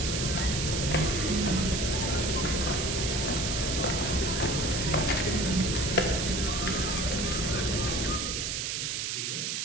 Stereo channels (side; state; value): right; noise; hiss, 1 dB below the sound